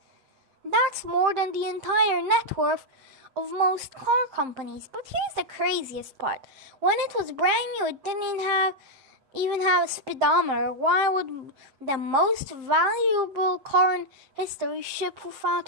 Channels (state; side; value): late; left; 7.6 ms